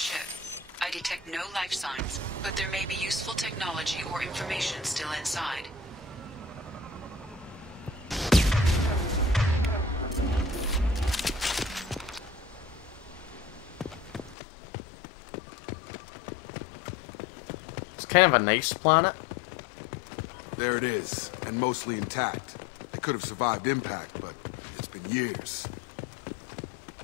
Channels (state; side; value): drops out; right; at 14.4 s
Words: I detect no life signs, but there may be useful technology or information still inside. It's kind of a nice planet.